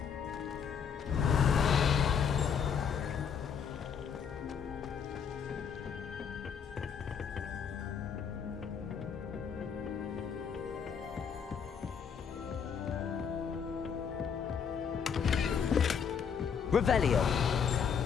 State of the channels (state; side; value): quieter; right; 7.0 dB